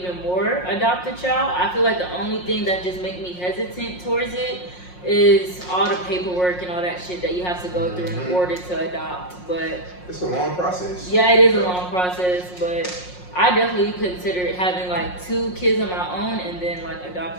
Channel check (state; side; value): late; right; 5.6 ms